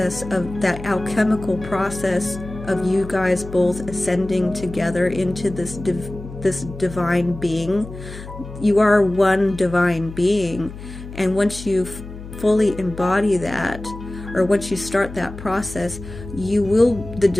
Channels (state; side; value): noise; left; hum, 13 dB below the sound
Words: of that alchemical process of you guys both ascending together into this divine being. You are one divine being, and once you fully embody that, or once you start that process, the